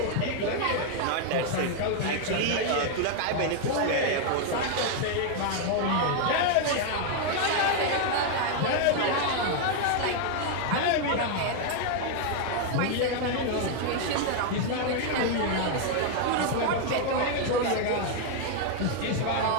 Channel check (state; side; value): different; both; correlation 0.00